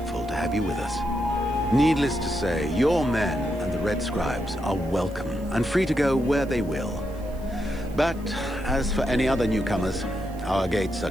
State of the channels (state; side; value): noise; right; hiss, 25 dB below the sound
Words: to have you with us. Needless to say, your men and the Red Scribes are welcome and free to go where they will. But as for any other newcomers, our gates are